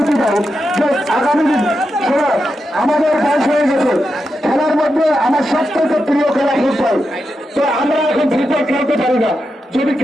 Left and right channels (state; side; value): normal; both; correlation 0.87